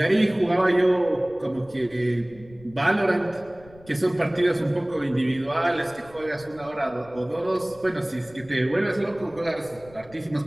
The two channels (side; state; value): left; noise; rumble, 23 dB below the sound